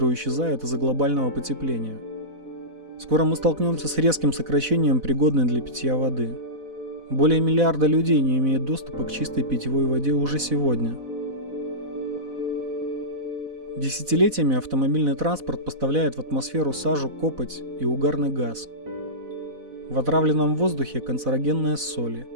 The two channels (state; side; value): late; left; 4.0 ms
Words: исчезают из-за глобального потепления. Скоро мы столкнемся с резким сокращением пригодной для питья воды. Более миллиарда людей не имеют доступа к чистой питьевой воде уже сегодня. Десятилетиями автомобильный транспорт поставляет в атмосферу сажу, копоть и угарный газ. В отравленном воздухе канцерогенные соли.